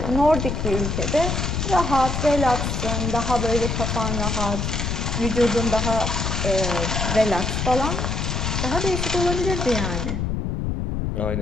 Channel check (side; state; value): left; noise; rumble, 1 dB below the sound